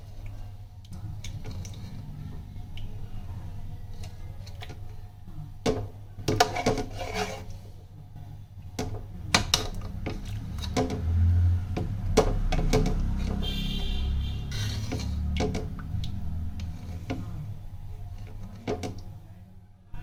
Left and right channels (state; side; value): identical; both; correlation 1.00